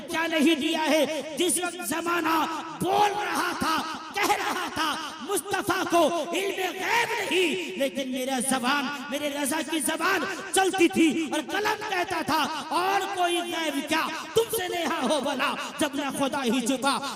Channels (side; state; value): both; identical; correlation 1.00